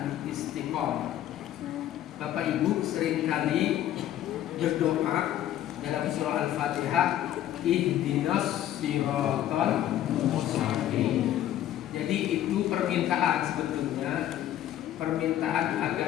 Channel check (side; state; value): right; quieter; 12.2 dB